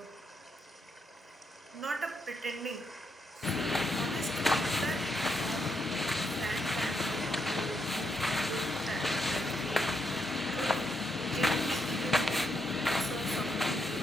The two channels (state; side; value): normal; both; correlation 0.79